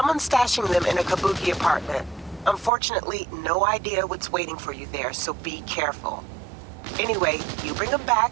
stashing them in a Kabuki apartment. Unfortunately, no idea what's waiting for you there, so be careful. Anyway, you bring them back,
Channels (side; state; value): left; drops out; at 2.7 s